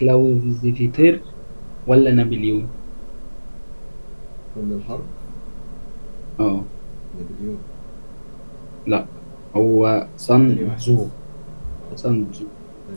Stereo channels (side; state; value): both; inverted; correlation -1.00